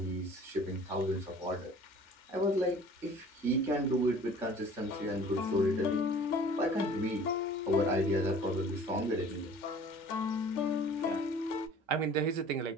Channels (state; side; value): normal; both; correlation 0.48